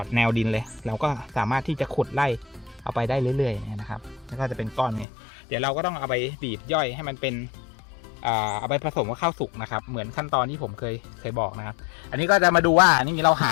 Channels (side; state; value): right; drops out; at 5.1 s